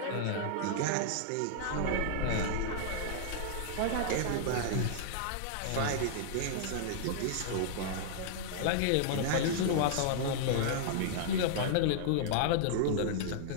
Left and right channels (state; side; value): different; both; correlation -0.01